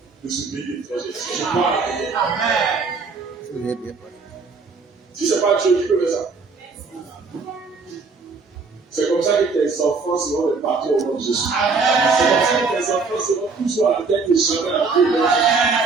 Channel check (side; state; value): left; quieter; 4.5 dB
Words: de ce pays étranger. Est-ce que je parle avec elle? Si ce n'est pas Dieu qui peut faire ça. C'est comme ça que tes enfants seront les patrons au nom de Jésus. C'est comme ça que tes enfants seront toujours à la tête et jamais à la queue.